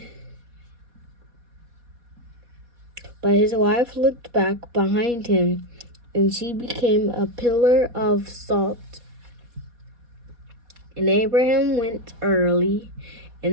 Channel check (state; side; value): late; left; 4.2 ms